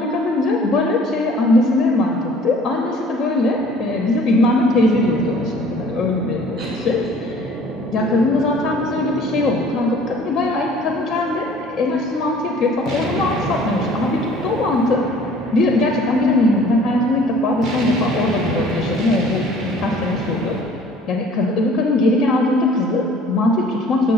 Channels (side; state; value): both; normal; correlation 0.52